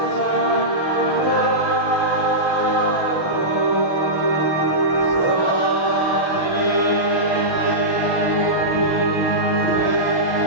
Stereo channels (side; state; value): right; late; 6.3 ms